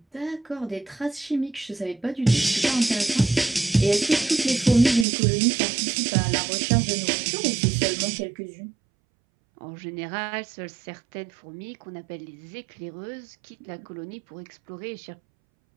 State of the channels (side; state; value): left; drops out; at 5.1 s